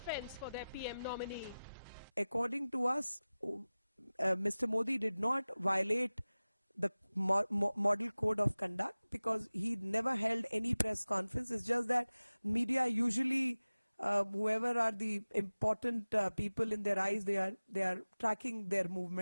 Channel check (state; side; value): inverted; both; correlation -0.98